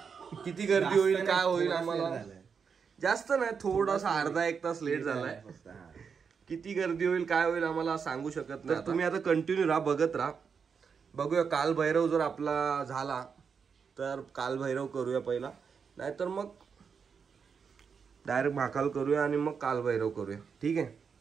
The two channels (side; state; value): left; quieter; 6.2 dB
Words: किती गर्दी होईल काय होईल आम्हाला जास्त नाही, थोडासा अर्धा एक तास लेट झालाय। किती गर्दी होईल काय होईल आम्हाला सांगू शकत नाही। तुम्ही आता कंटिन्यू राहा, बघत राहा। बघूया काल भैरव जर आपला झाला तर काल भैरव करूया पहिला, नाहीतर मग डायरेक्ट महाकाल करूया आणि मग काल भैरव करूया। ठीक आहे।